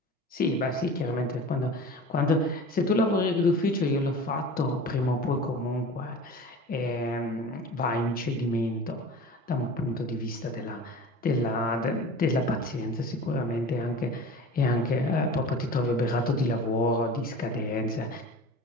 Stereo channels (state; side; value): normal; both; correlation 0.37